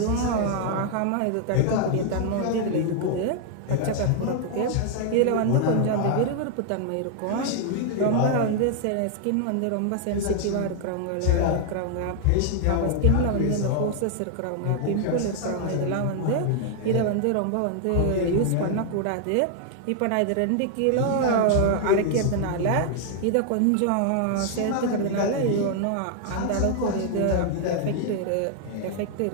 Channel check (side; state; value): both; different; correlation 0.00